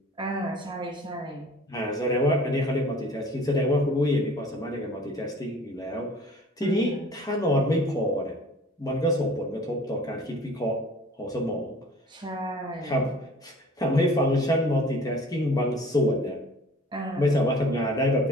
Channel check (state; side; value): normal; both; correlation 0.48